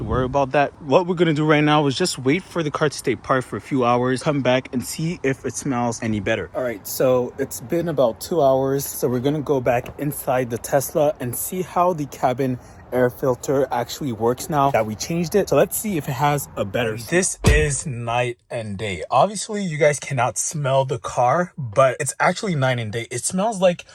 worry about that. What we're gonna do right now is just wait for the car to stay parked for a few hours, come back and see if it smells any better. All right, so it's been about 2 hours, so we're gonna go back inside the Tesla and see how the cabin air filter actually works now that we changed it. So let's see if it has a better. This is night and day. Obviously you guys cannot smell the car, but it's actually night and day. It smells like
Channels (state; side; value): identical; both; correlation 1.00